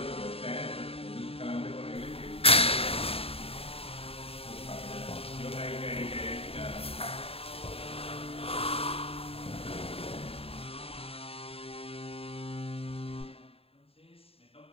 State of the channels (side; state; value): right; late; 0.28 ms